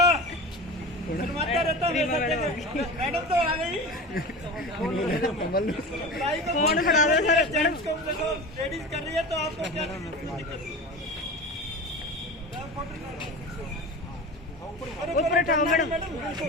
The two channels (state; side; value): normal; both; correlation 0.31